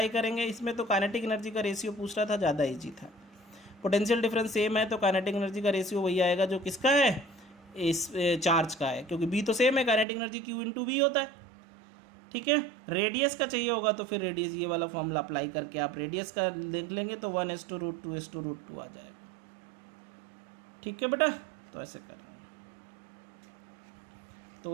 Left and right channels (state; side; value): drops out; left; at 10.1 s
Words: करेंगे। इसमें तो काइनेटिक एनर्जी का रेशियो पूछ रहा था, ज़्यादा ईजी था। पोटेंशियल डिफरेंस सेम है तो काइनेटिक एनर्जी का रेशियो वही आएगा जो किसका है, इस चार्ज का है, क्योंकि बी तो सेम है, काइनेटिक एनर्जी Q/V होता है। ठीक है, रेडियस का चाहिए होगा तो फिर रेडियस ये वाला फॉर्मूला अप्लाई करके आप रेडियस का देख लेंगे तो 1:√2:√2 आ जाएगा। ठीक है बेटा, तो ऐसे करेंगे।